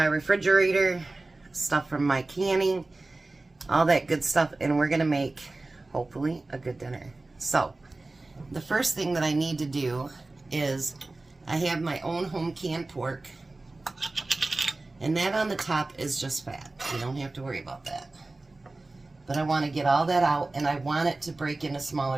refrigerator, stuff from my canning, all that good stuff, and we're going to make, hopefully, a good dinner. So the first thing that I need to do is I have my own home canned pork, and that on the top is just fat. You don't have to worry about that. But I want to get all that out, and I want it to break into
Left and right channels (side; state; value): left; quieter; 3.1 dB